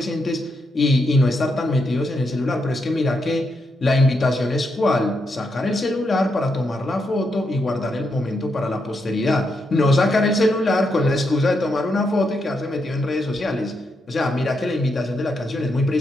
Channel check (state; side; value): normal; both; correlation 0.82